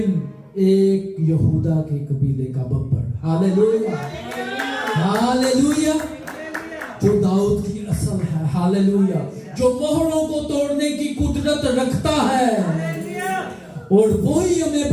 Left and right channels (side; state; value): both; identical; correlation 1.00